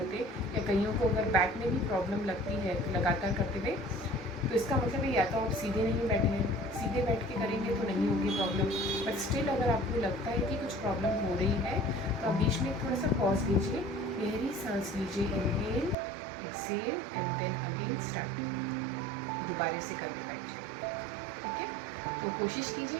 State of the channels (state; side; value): drops out; left; at 16.0 s